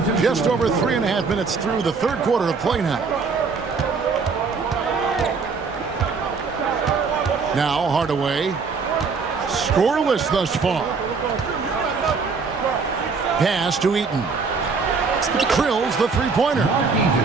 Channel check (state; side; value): quieter; left; 4.9 dB